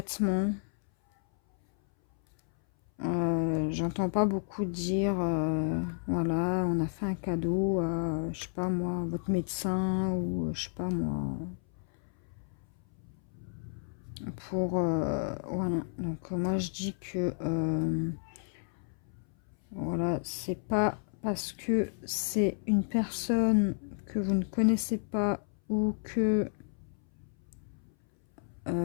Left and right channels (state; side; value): silent; right; 57 dB below the other